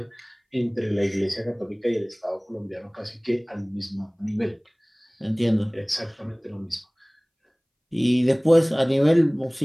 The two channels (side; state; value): both; identical; correlation 1.00